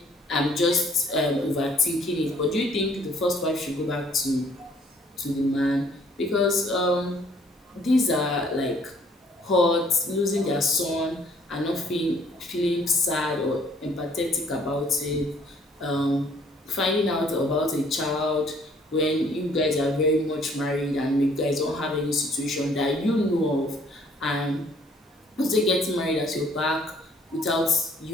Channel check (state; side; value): normal; both; correlation 0.61